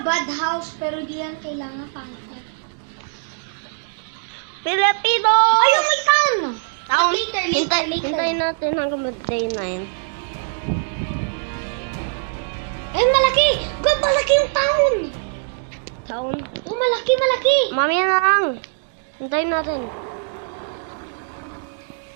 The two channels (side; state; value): left; silent; digital silence